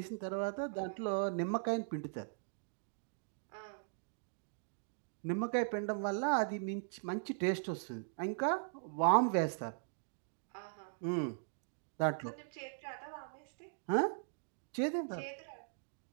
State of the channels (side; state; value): left; silent; digital silence